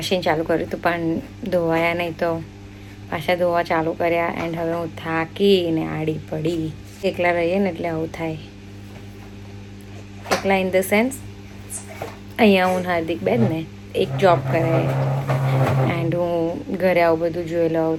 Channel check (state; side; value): identical; both; correlation 1.00